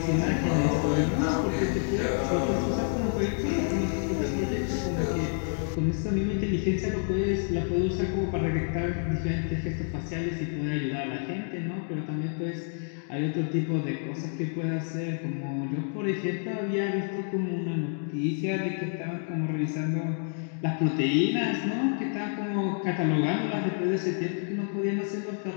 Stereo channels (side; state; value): right; silent; 59 dB below the other